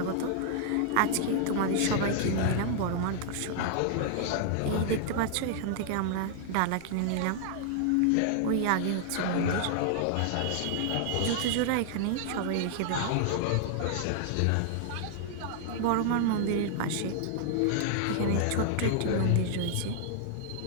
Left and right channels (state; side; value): different; both; correlation -0.01